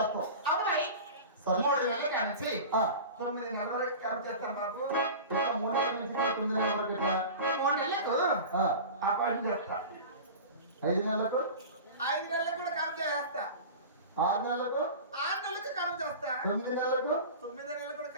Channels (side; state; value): both; inverted; correlation -0.34